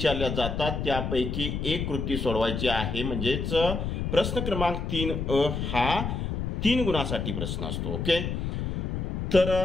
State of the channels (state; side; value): noise; left; rumble, 2 dB below the sound